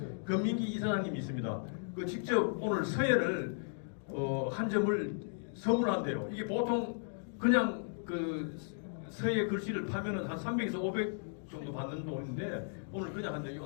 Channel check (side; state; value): right; silent; digital silence